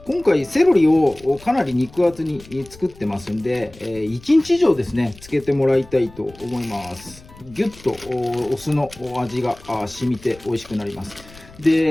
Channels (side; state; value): left; noise; rumble, 22 dB below the sound